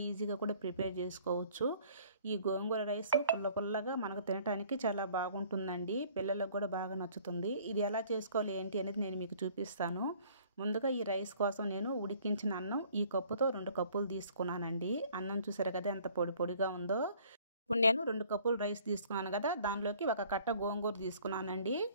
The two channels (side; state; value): both; inverted; correlation -0.56